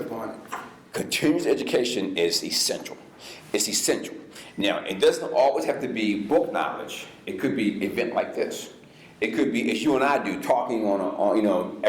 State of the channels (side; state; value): both; identical; correlation 1.00